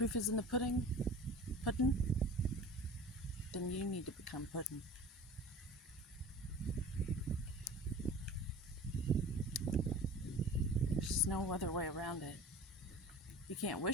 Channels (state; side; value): normal; both; correlation 0.39